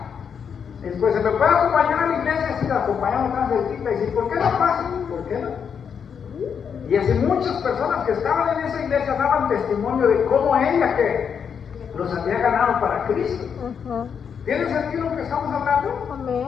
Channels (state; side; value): quieter; right; 7.1 dB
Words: Después, ¿se me puede acompañar a la iglesia? Sí, la acompañamos tan cerquita. Y dice, ¿por qué no pasa? ¿Por qué no? Y así muchas personas que estaban en esa iglesia daban testimonio de cómo ella que los había ganado para Cristo. ¿Tiene sentido lo que estamos hablando?